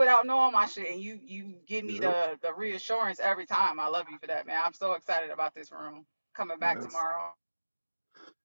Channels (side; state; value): both; inverted; correlation -1.00